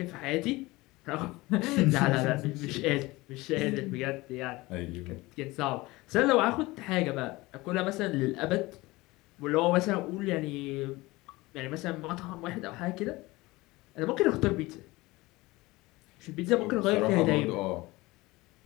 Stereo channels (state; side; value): quieter; right; 21.0 dB